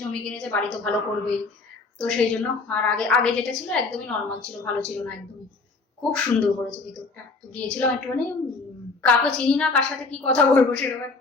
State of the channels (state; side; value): quieter; right; 3.9 dB